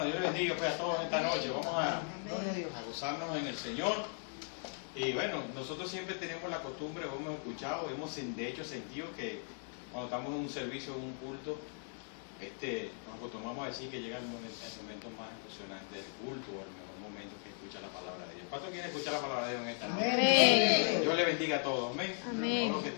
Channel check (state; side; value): silent; right; 53 dB below the other